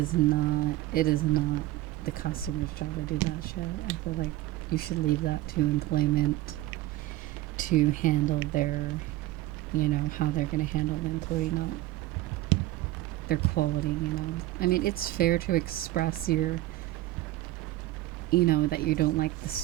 not the customer's job to do that shit. I feel like you should leave that to employment to handle their, you know, how they're going to handle the employee, not their quality, you know. I mean, it's fair to express your, you know, that you don't like the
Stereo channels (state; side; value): quieter; left; 16.6 dB